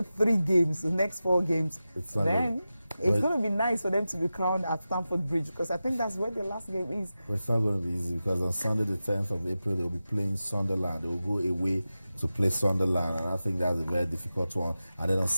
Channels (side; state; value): both; inverted; correlation -0.94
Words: games, the next 4 games, then it's going to be nice for them to be crowned at Stamford Bridge, because I think that's where the last game is. But it's not going to be easy, because on Sunday the 10th of April they'll be playing Sunderland. They will go away to play Sunderland, and I think that's a very difficult one. And then on